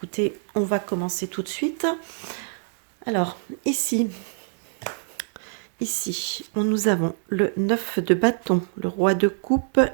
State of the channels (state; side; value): silent; left; digital silence